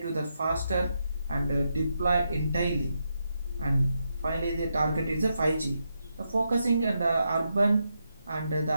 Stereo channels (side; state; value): both; inverted; correlation -0.84